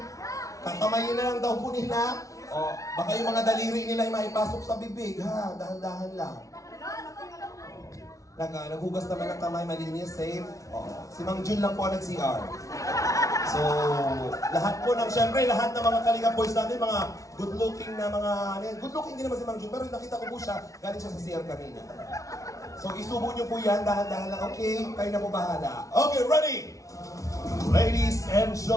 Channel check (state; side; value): late; right; 0.16 ms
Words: Kakamayin na lang daw po nila. O, baka yung mga daliri nila ay maipasok sa bibig, ha? Dahan-dahan lang. Naghugas naman ng kamay, malinis, safe. O, si Mang Jun lang po ang nag-CR. So, lahat po ng, syempre, lahat ng mga Kalinga boys natin, mga good-looking na mga, good-looking din naman si Mang Jun, pero nakita ko po siya, galing siya sa CR kanina. So, isubo nyo po yan, dahan-dahan lang, okay? Kayo na po bahala. Okay, ready? Ladies and